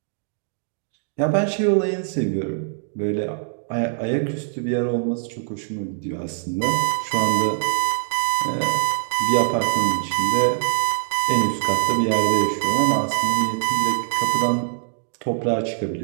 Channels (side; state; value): left; silent; digital silence